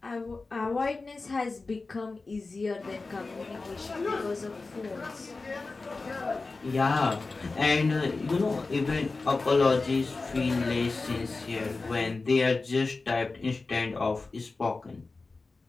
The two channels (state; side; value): quieter; right; 3.8 dB